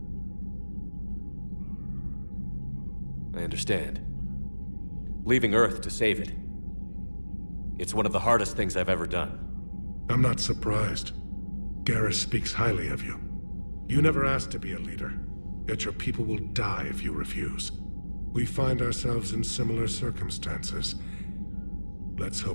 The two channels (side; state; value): both; inverted; correlation -1.00